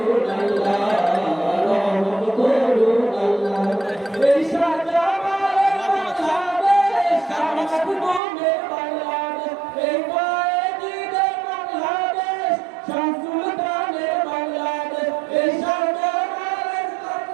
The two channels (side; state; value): left; drops out; at 8.2 s